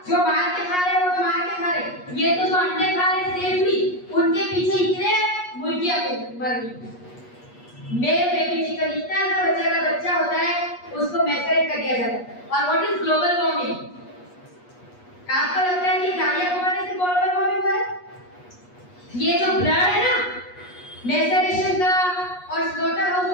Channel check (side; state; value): right; late; 8.3 ms